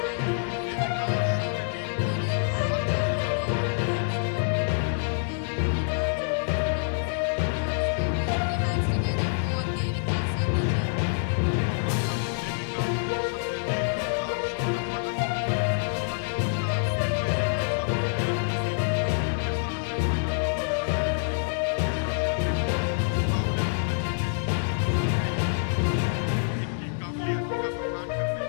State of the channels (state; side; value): silent; right; digital silence